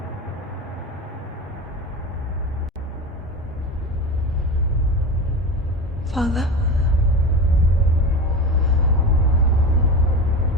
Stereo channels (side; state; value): both; normal; correlation 0.27